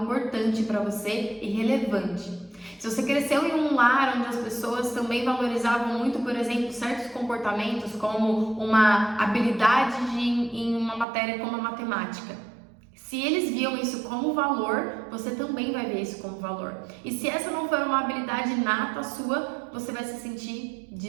para você e relevante. Se você cresceu em um lar onde as pessoas também valorizavam muito, por exemplo, certos comportamentos como uma habilidade em uma matéria como a matemática, se eles viam isso como valor, você também vai ver isso como valor. E se essa não for uma habilidade nata sua, você vai se sentir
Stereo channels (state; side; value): drops out; left; at 11.1 s